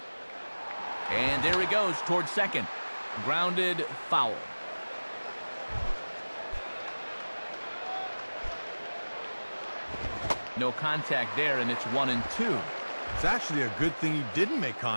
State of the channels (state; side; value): inverted; both; correlation -1.00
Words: And there he goes towards second. Grounded, foul. No contact there, and it's 1-2. It's actually a good thing he didn't make